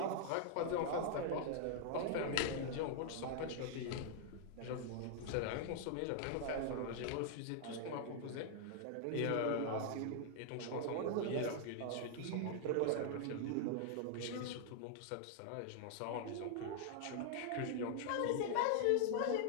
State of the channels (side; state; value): both; different; correlation -0.01